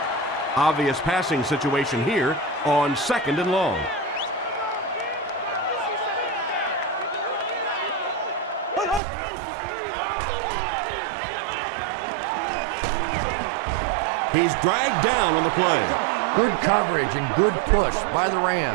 Obvious passing situation here on 2nd and long. He's dragged down on the play. Good coverage and good push by the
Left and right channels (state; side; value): drops out; left; at 9.0 s